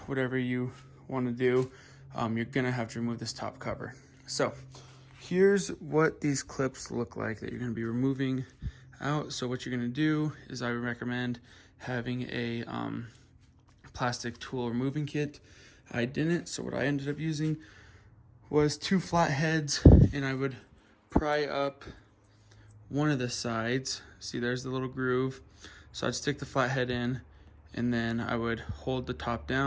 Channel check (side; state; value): both; identical; correlation 1.00